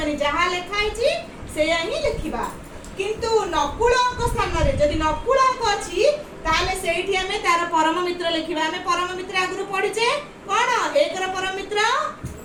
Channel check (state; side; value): identical; both; correlation 1.00